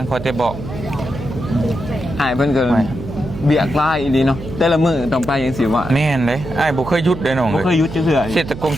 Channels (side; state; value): right; noise; hum, 11 dB below the sound